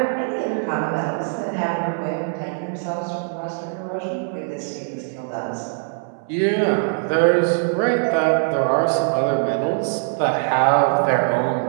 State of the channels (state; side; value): silent; left; 63 dB below the other